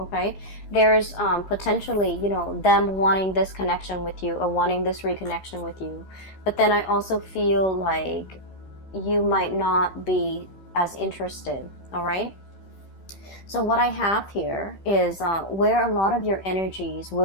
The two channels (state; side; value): late; right; 15 ms